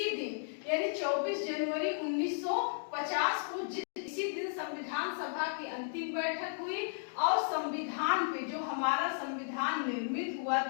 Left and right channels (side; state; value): right; silent; digital silence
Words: दिन यानी 24 जनवरी 1950 को इसी दिन संविधान सभा की अंतिम बैठक हुई और संविधान पे, जो हमारा संविधान निर्मित हुआ